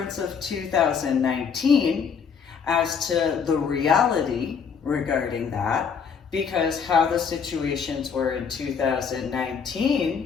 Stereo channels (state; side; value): quieter; right; 6.4 dB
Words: of 2019 as to the reality regarding that, because how the situations were in